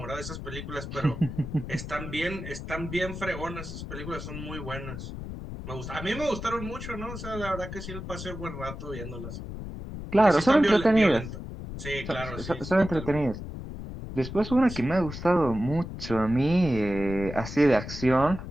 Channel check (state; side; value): noise; left; rumble, 9 dB below the sound